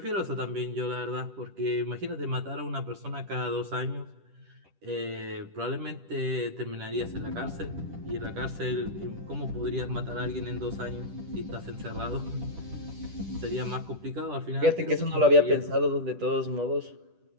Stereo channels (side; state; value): left; late; 10 ms